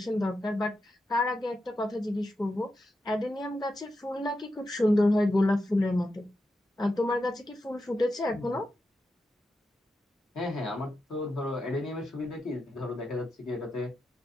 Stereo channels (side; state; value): both; normal; correlation 0.88